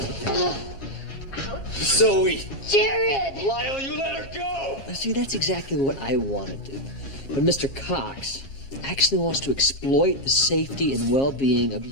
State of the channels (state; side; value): late; right; 7.4 ms